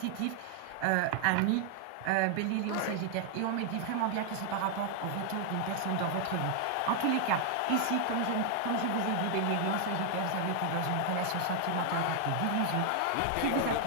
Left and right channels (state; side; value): different; both; correlation 0.00